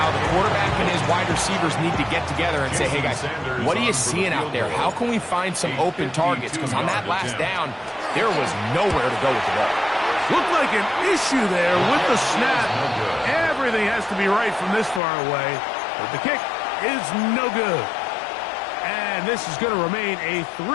the quarterback and his wide receivers need to get together and say, hey guys, what are you seeing out there? How can we find some open targets? Because on that last down, there was nowhere to go with the ball. Looked like an issue there with the snap. Everything has to be right from this far away. But the kick is no good. And this is going to remain a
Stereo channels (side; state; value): right; drops out; at 15.0 s